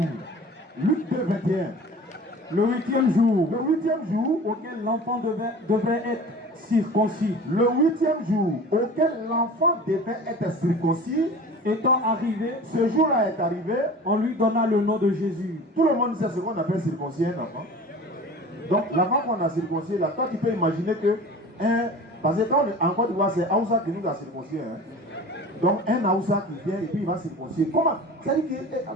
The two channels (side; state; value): both; normal; correlation 0.40